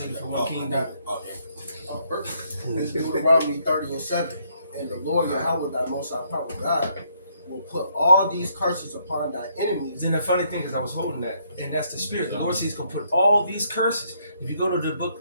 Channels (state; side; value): inverted; both; correlation -0.71